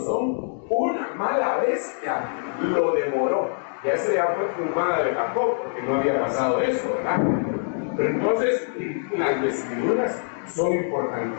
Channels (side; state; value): right; silent; digital silence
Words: una mala bestia, lo devoró. Y esa ya fue fumada de Jacob, porque no había pasado eso, ¿verdad? Pero entonces, las vestiduras son